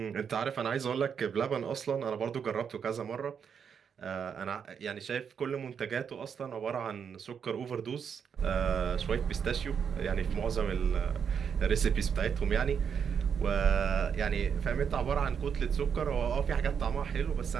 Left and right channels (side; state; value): left; quieter; 7.1 dB